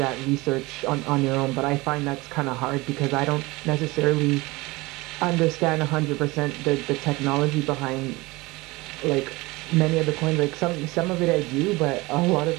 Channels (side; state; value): left; quieter; 22.3 dB